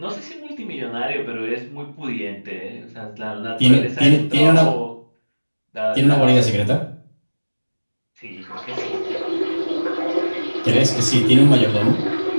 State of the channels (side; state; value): both; inverted; correlation -1.00